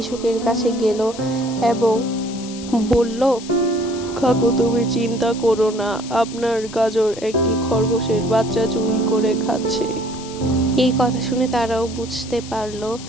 কাছে গেল এবং বলল, কাকু তুমি চিন্তা করো না, আপনার গাজর একটি খরগোশের বাচ্চা চুরি করে খাচ্ছে। এই কথা শুনে তারাও বুঝতে পারলো।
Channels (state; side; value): noise; left; hiss, 15 dB below the sound